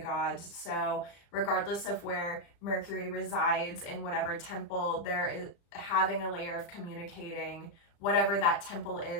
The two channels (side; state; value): right; late; 35 ms